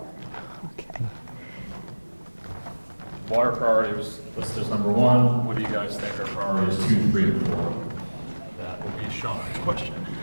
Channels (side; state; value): both; inverted; correlation -1.00